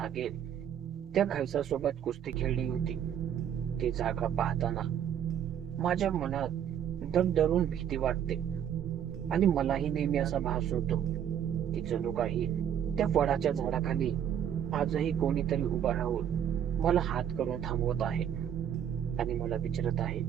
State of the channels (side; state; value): left; quieter; 9.4 dB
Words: त्या खैसासोबत कुस्ती खेळली होती, ती जागा पाहताना माझ्या मनात धडधडून भीती वाटते. आणि मलाही नेहमी असा भास होतो की जणू काही त्या वडाच्या झाडाखाली आजही कोणीतरी उभा राहून मला हात करून थांबवत आहे आणि मला विचारत आहे,